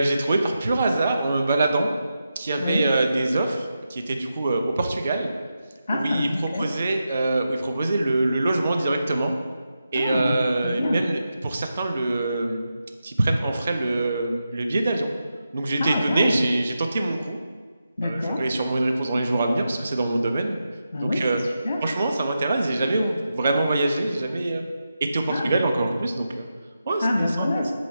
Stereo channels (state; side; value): inverted; both; correlation -0.88